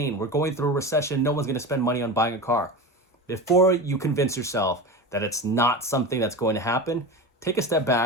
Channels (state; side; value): normal; both; correlation 0.26